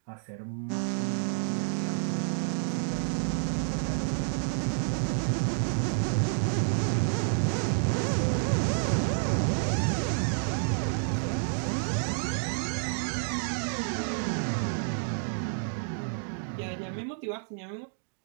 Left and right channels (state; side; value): silent; left; digital silence